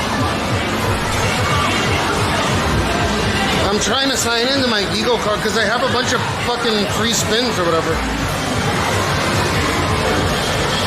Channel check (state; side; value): identical; both; correlation 1.00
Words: I'm trying to sign into my Eagle card because I have a bunch of fucking free spins or whatever.